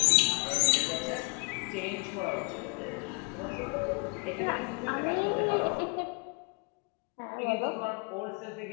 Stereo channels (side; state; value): right; quieter; 32.2 dB